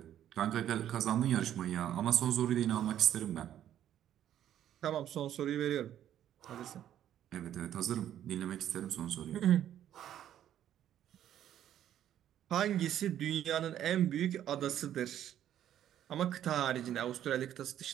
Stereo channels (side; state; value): left; quieter; 11.0 dB